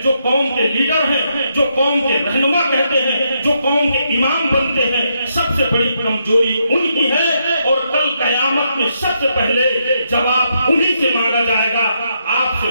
जो कौम के लीडर हैं, जो कौम के रहनुमा कहते हैं, जो कौम के इमाम बनते हैं, सबसे बड़ी कमजोरी उनकी है। और कल कयामत में सबसे पहले जवाब उन्हीं से मांगा जाएगा, आपसे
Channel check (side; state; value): both; inverted; correlation -0.79